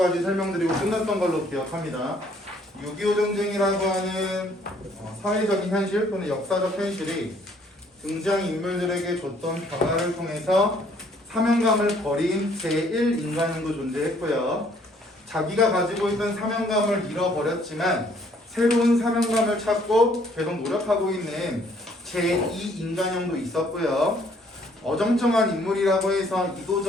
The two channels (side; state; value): both; normal; correlation 0.63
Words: 설명드리고 끝났던 걸로 기억합니다. 6.25 전쟁이라고 하는 사회적인 현실 또는 역사적 현실이 등장인물들에게 줬던 변화를 통해서 사명감을 버린 제1인간형도 존재했고요. 자기가 가지고 있던 사명감을 잃어버렸지만 새로운 사명감을 찾고 계속 노력하고 있는 제2인간형도 있었고요. 어정쩡한 인물이라고 해서